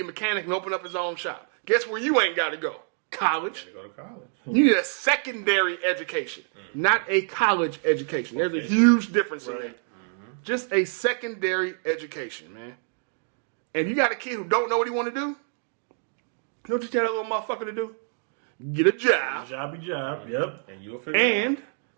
mechanic and open up his own shop. Guess where you ain't got to go? College. Go to college. You need a secondary education, not a college education. There's a huge difference in that. Just a secondary education, man. And you got a kid who don't know what he want to do, you know what you tell that little motherfucker to do? Get a job. Jobby job. Yep. And you'll figure it out. And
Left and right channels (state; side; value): silent; left; 61 dB below the other